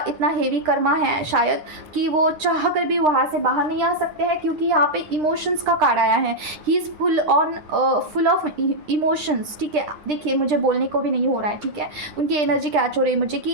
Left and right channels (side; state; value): left; late; 9.9 ms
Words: इतना हेवी कर्मा है शायद कि वो चाह कर भी वहाँ से बाहर नहीं आ सकते हैं, क्योंकि यहाँ पे इमोशंस का कार्ड आया है। He is full of emotions, ठीक है। देखिए मुझे बोलने को भी नहीं हो रहा है, ठीक है। उनकी एनर्जी कैच हो रही है मुझे